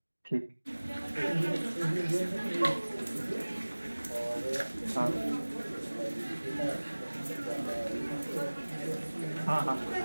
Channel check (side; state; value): both; inverted; correlation -1.00